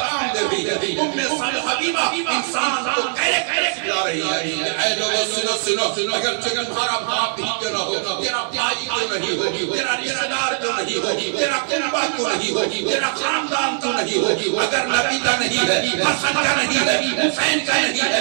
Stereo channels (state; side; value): silent; left; 63 dB below the other